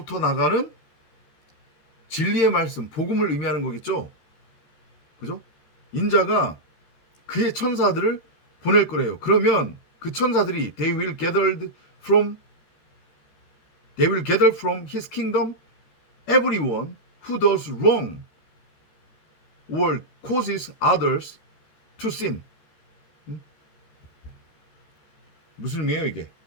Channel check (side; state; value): right; late; 13 ms